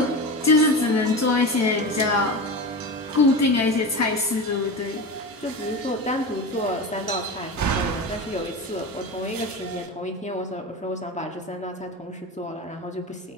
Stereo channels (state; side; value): normal; both; correlation 0.25